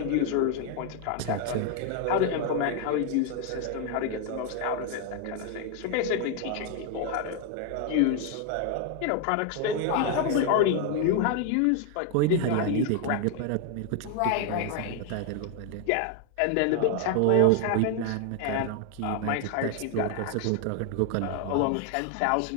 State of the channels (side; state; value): both; different; correlation 0.00